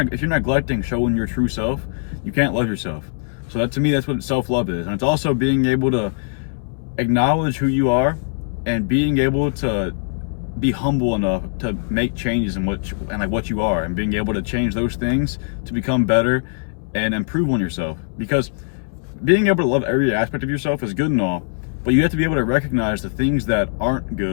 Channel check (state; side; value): silent; right; digital silence